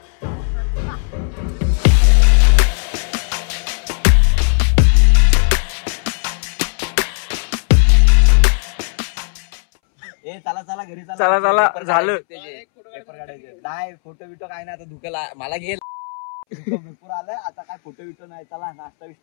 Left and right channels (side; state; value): right; silent; 67 dB below the other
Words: चला चला घरी चला झालं. पेपर काढायचे नाही फोटो बिटो काय नाही आता धुकेला मला घेईल भरपूर आलं आता काय फोटो बिटो नाही. चला नाश्ता